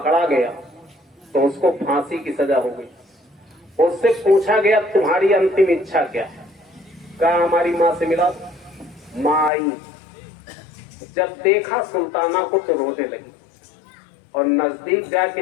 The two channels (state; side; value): drops out; right; at 9.5 s